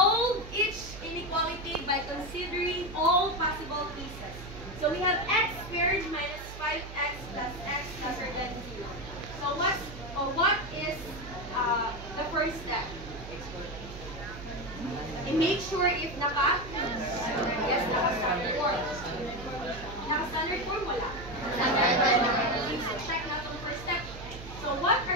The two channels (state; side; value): noise; right; hum, 12 dB below the sound